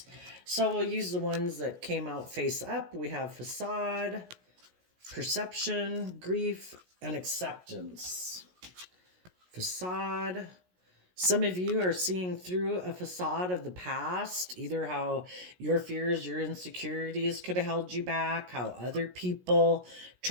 So we'll use the ones that came out face up. We have Facade, Perception, Grief, and Acceptance. Facade. Some of you are seeing through a facade of the past, either how your fears, your insecurities could have held you back, how other people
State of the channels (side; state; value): left; late; 16 ms